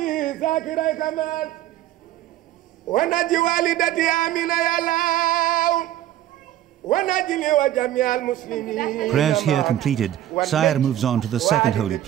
Prayers here completed, Saer moves on to the second holy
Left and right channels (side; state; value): left; quieter; 12.9 dB